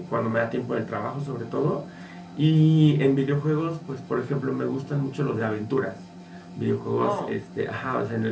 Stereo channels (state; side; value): identical; both; correlation 1.00